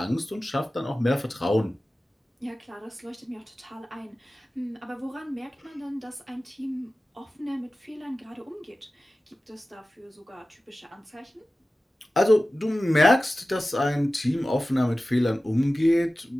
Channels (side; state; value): both; normal; correlation 0.96